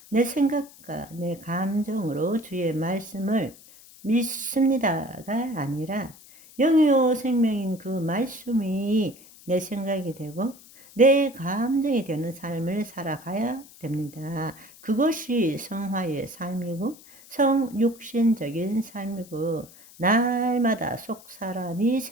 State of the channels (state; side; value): noise; left; hiss, 22 dB below the sound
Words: 내 생각과 내 감정으로 주의 말씀을 믿습니다가 아니라 영이요 생명인 그 말씀이 내 생각이 되고 내 감정이 되는 삶을 살아가야 됩니다. 그것이 성화의 삶이고 성육신적인 삶이고 날마다 속 사람이